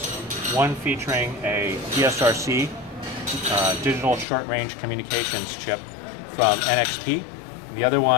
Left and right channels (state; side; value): drops out; right; at 4.2 s